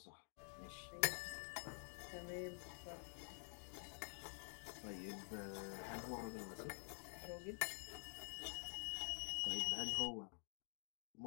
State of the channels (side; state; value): right; silent; digital silence